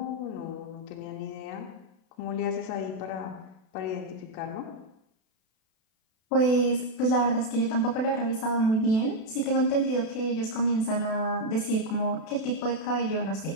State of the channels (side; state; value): right; late; 32 ms